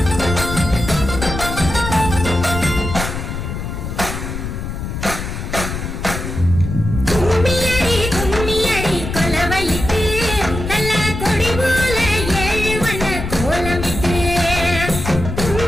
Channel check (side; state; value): left; noise; rumble, 5 dB below the sound